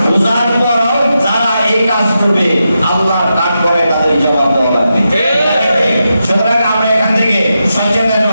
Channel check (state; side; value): inverted; both; correlation -0.87